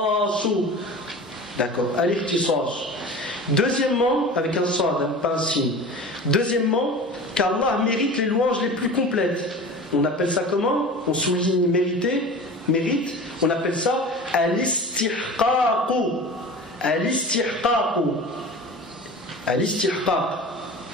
D'accord, al-ikhtisas. Deuxièmement, avec un sad, pas un signe. Deuxièmement, qu'Allah mérite les louanges les plus complètes. On appelle ça comment? On souligne mérite. On appelle ça al-istihqaqu. Al-istihqaq.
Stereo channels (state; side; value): normal; both; correlation 0.36